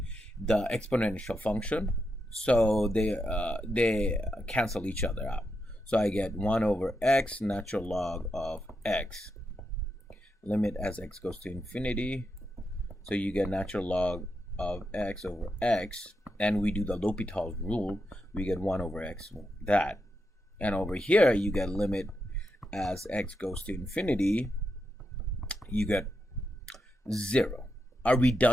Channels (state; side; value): normal; both; correlation 0.85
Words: the exponential function. So they cancel each other out. So I get 1 over x natural log of x. Limit as x goes to infinity. So you get natural log of x over x. And we do the Hopitals rule. We get 1 over x, that. And over here, you get limit as x goes to infinity. You get 0. Are we